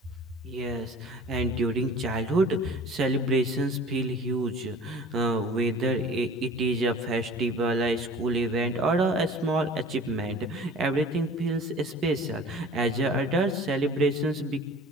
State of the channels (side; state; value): both; normal; correlation 0.44